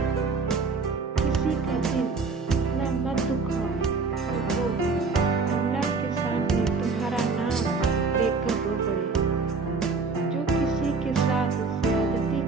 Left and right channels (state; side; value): quieter; left; 4.4 dB